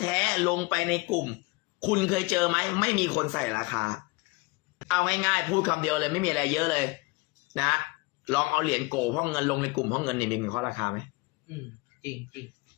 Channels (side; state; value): right; quieter; 25.3 dB